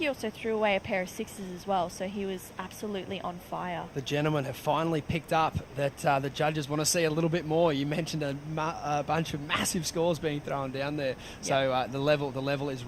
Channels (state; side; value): identical; both; correlation 1.00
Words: also threw away a pair of 6s as well. So he was absolutely on fire. The gentlemen have finally picked up that the judges want to see a little bit more. You mentioned a bunch of massive scores being thrown down there. So the level is